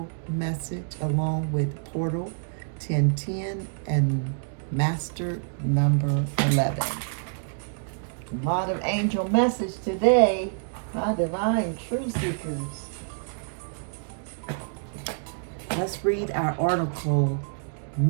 message, along with portal 10 10 and master number 11. A lot of angel message today, my divine truth seekers. Let's read our article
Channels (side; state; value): left; silent; digital silence